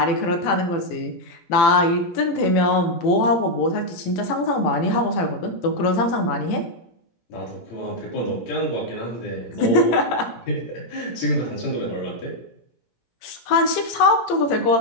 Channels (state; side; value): late; right; 18 ms